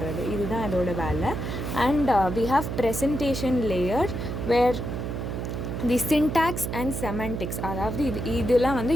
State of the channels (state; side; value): noise; right; hum, 4 dB below the sound